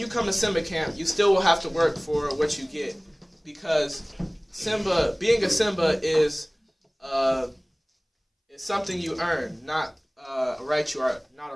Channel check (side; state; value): both; identical; correlation 1.00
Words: come to Simba camp, you still will have to work for what you get, because being a Simba is something you earn, not a right. Not a